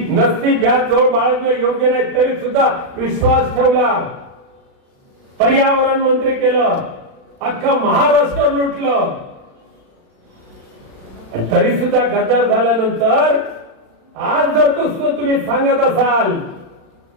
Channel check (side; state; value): left; late; 36 ms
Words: नसती व्याज जवळ बाळगणं योग्य नाही, तरी सुद्धा विश्वास ठेवला, पर्यावरण मंत्री केलं, अख्खं महाराष्ट्र लुटलं, तरी सुद्धा गद्दार झाल्यानंतर आज जर तुम्ही सांगत असाल